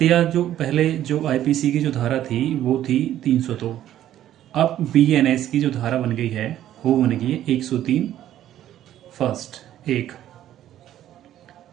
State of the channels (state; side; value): quieter; left; 12.1 dB